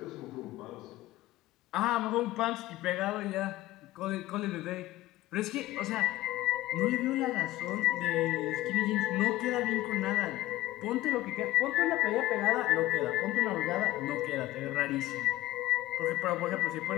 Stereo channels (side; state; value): right; quieter; 16.2 dB